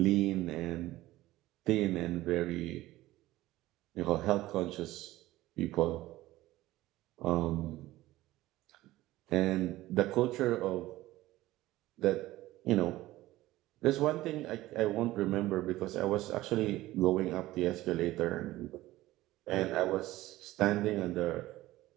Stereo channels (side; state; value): left; quieter; 16.8 dB